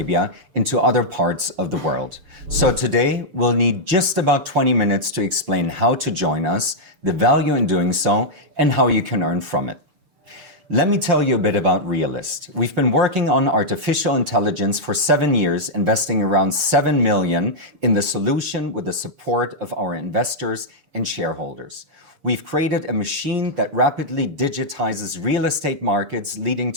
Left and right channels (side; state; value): left; late; 6.8 ms